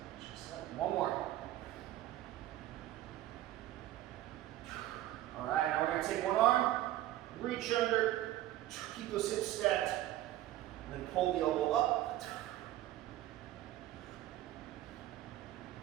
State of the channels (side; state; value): left; quieter; 14.3 dB